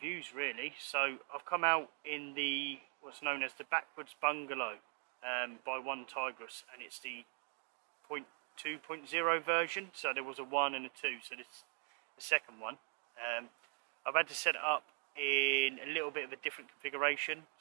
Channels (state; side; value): quieter; left; 38.5 dB